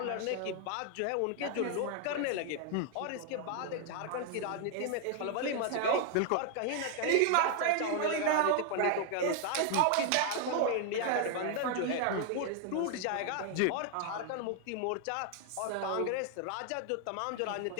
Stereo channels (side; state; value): both; different; correlation 0.00